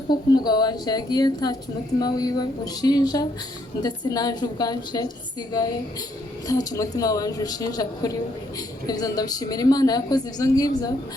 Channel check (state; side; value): normal; both; correlation 0.72